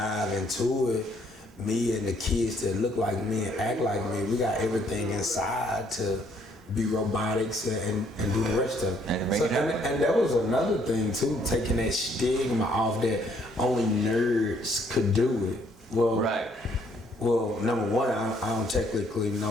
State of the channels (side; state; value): both; normal; correlation 0.67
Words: into it, me and the kids that look like me and act like me, we got everything inside to be robotics and do the rest of it. And that was another thing too, taking that stigma off that only nerds could do it. Well, right. Well, number one, I don't technically